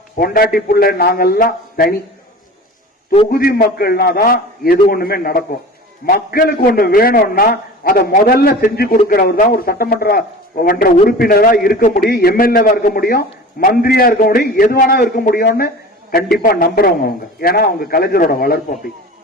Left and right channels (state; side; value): normal; both; correlation 0.37